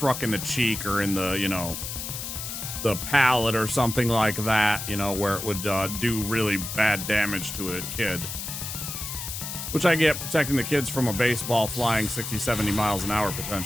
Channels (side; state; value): left; noise; hiss, 6 dB below the sound